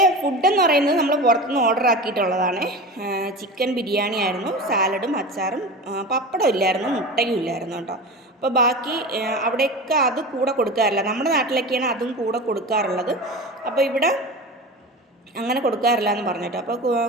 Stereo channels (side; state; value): both; normal; correlation 0.30